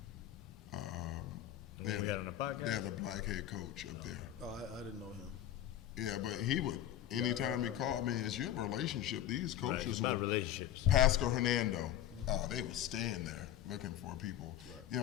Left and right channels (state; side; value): quieter; right; 11.6 dB